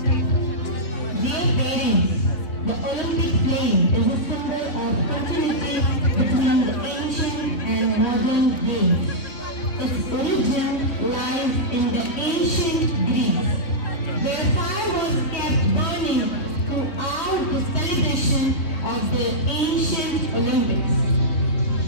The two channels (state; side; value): late; right; 3.1 ms